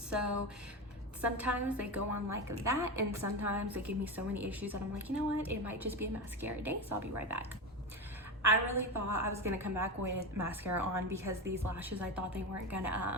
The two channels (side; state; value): both; normal; correlation 0.19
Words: sometimes they go on like that, and sometimes they give me so many issues that I'm like, you know what, it might just be a mascara day, so I'll be right back. I really thought I was gonna come back with mascara on because these lashes, I thought they weren't